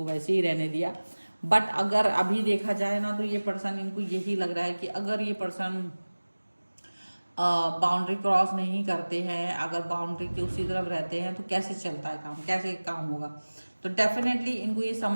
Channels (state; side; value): inverted; both; correlation -1.00